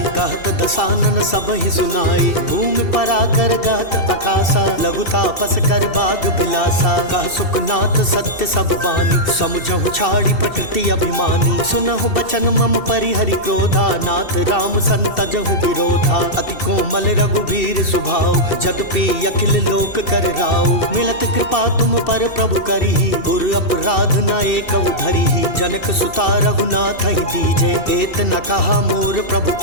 कहत दसानन सब ही सुनाई। भूमि पराकर गहत आकाशा, लघु तापस कर बाग बिलासा। कह सुखनाथ सत्य सब बानी, समुझहु छाड़ी प्रकृति अभिमानी। सुनहु बचन मम परिहरि क्रोधा, नाथ राम संतजहु विरोधा। अति कोमल रघुवीर सुभाव, जदपि अखिल लोक कर राव। मिलत कृपा तुम पर प्रभु करिहि, उर अपराध न एक धरिहि। जनक सुता रघुनाथ ही दीजे, एत न कहा मोर प्रभु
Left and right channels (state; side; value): late; right; 2.7 ms